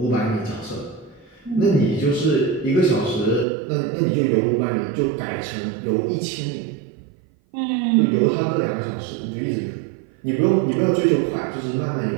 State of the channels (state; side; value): drops out; left; at 3.5 s